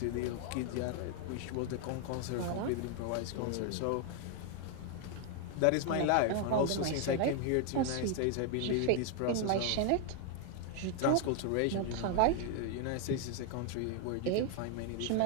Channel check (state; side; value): different; both; correlation 0.00